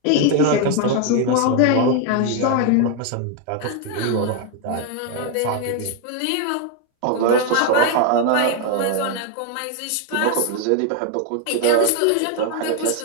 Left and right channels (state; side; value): different; both; correlation 0.01